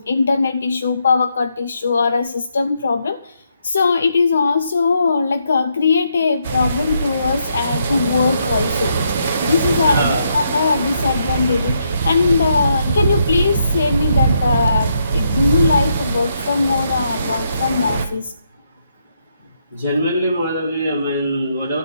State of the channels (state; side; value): inverted; both; correlation -0.77